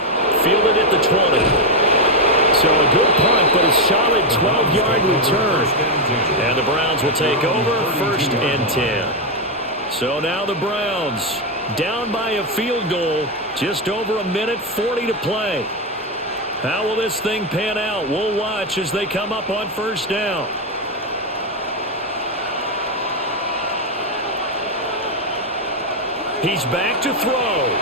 Fielded at the 20. So a good punt, but a solid 12-yard return. And the Browns will take over 1st and 10. So now the Browns down by a field goal. Just over a minute, 40 to play. How will this thing pan out? We'll watch as they come up on first down. He's back to throw.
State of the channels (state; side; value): normal; both; correlation 0.04